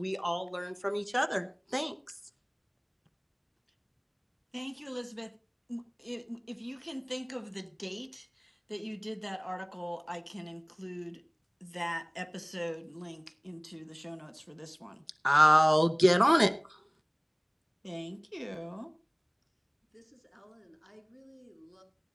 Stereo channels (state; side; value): identical; both; correlation 1.00